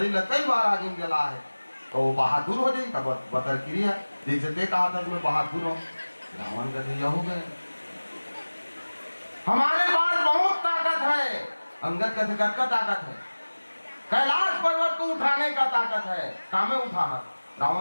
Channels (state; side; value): inverted; both; correlation -1.00